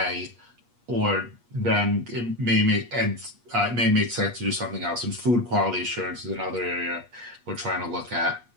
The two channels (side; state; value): left; late; 8.4 ms